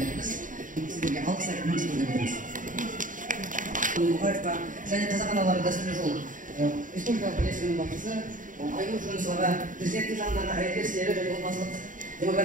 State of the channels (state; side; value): late; left; 0.38 ms